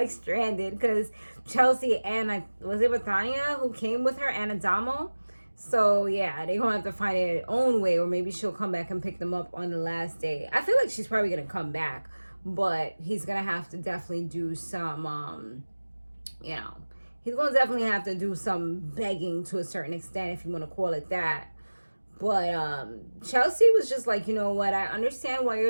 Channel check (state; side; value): inverted; both; correlation -1.00